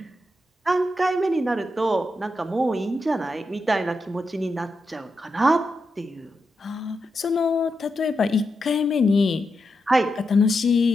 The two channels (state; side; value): normal; both; correlation 0.86